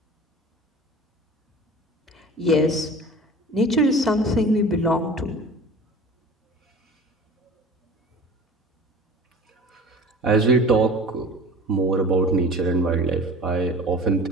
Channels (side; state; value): both; normal; correlation 0.41